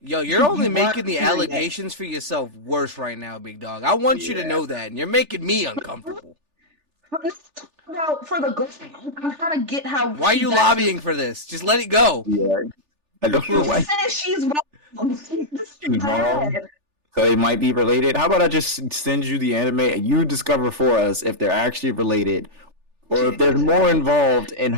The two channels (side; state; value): left; late; 3.4 ms